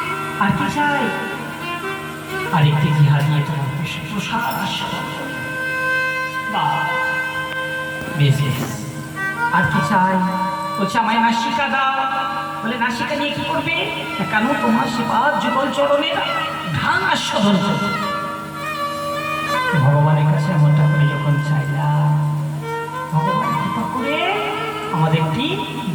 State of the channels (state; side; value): identical; both; correlation 1.00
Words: আর কি চাই? আর একটি জিহা দিয়ে তোমার প্রসাদ আস্বাদন করব। বেশ বেশ। আর কি চাই? বলছে আমায় নাসিকা দাও। বলে নাসিকা নিয়ে কি করবে? কেন তোমার সেবা যুগল চরণে ধান আস্বাদন করবে। ভগবানের কাছে এমনটা করে যখন চাইলাম, ভগবান কৃপা করে আমাদের একটি